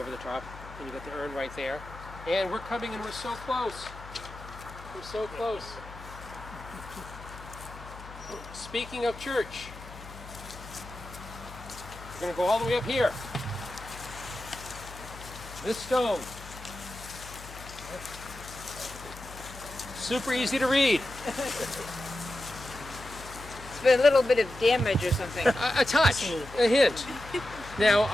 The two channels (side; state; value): left; noise; hum, 15 dB below the sound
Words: the top, and you got the urn right there. And we're coming, and we're so close. We're so close. Speaking of church, we're going to go all the way up here. This stone. Super easy to read. It's been a little bit of damage or something. A touch, a hint. Now,